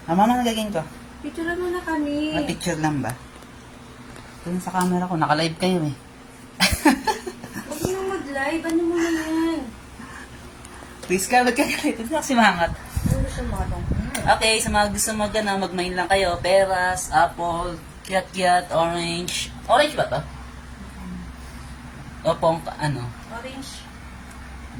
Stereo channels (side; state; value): both; identical; correlation 1.00